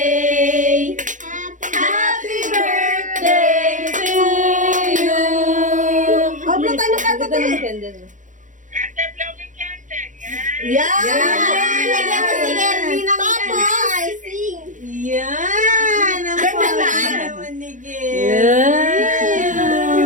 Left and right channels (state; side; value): late; left; 0.37 ms